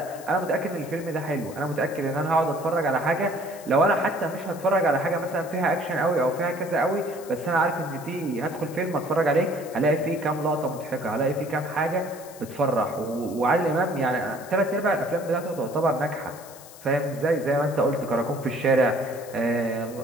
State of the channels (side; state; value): left; noise; hiss, 19 dB below the sound